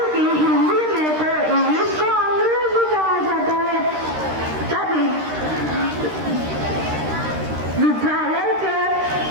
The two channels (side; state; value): left; late; 13 ms